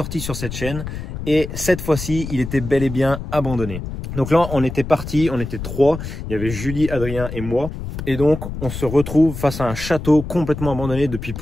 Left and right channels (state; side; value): noise; left; rumble, 8 dB below the sound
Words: sur cette chaîne. Et cette fois-ci, il était bel et bien abandonné. Donc là, on était partis, on était 3. Il y avait Julie, Adrien et moi. Et donc, on se retrouve face à un château complètement abandonné depuis